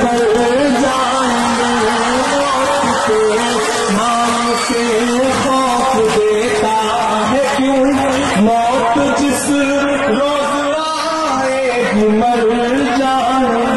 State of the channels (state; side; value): identical; both; correlation 1.00